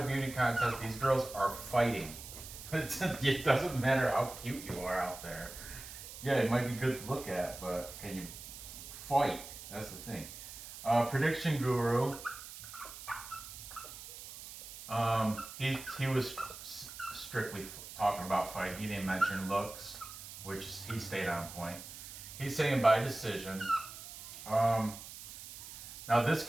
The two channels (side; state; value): right; noise; hiss, 12 dB below the sound